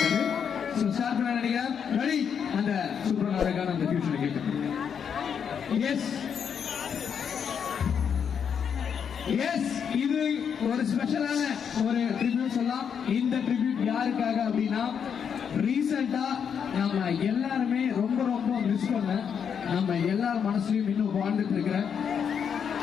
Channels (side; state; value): right; quieter; 7.4 dB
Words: ஸோ ஸ்டார்ட் பண்ண நினைக்கிறேன். ரெடி? அந்த சூப்பரான அழகான அந்த ஃபியூச்சரை கேட்கணும். எஸ் எஸ், இது ஒரு ஸ்பெஷலான ஒரு ட்ரிபியூட் சொல்லலாம். இந்த ட்ரிபியூட் யாருக்காக அப்படின்னா, ரீசெண்டா நம்ம எல்லாருமே ரொம்ப ரொம்ப மிஸ் பண்ண, நம்ம எல்லார் மனசுலயும் இன்னும் வாழ்ந்துட்டு இருக்கிற,